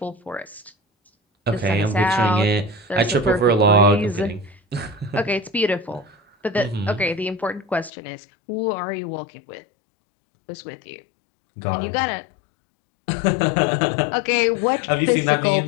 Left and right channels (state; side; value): drops out; right; at 7.9 s